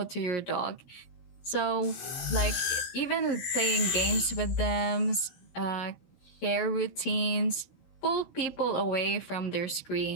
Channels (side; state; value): right; late; 16 ms